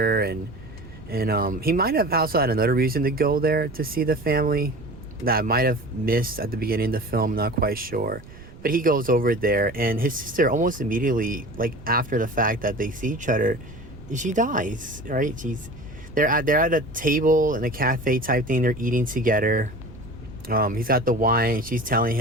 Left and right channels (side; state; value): right; noise; rumble, 18 dB below the sound